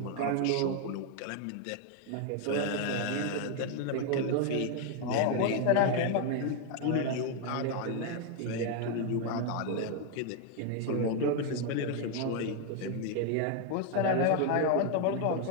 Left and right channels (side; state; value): both; different; correlation 0.01